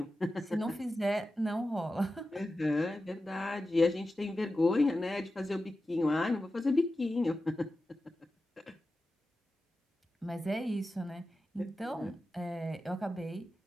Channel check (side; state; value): both; normal; correlation 0.93